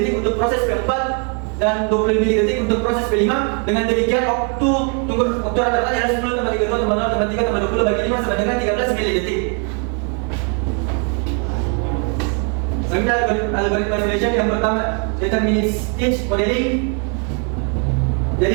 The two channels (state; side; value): quieter; left; 39.5 dB